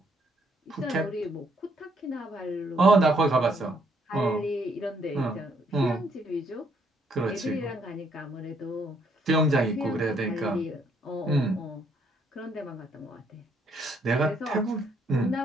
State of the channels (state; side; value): normal; both; correlation 0.70